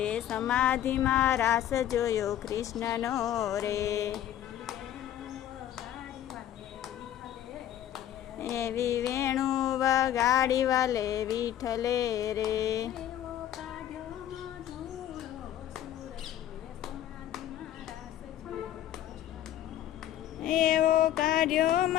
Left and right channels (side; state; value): right; quieter; 11.6 dB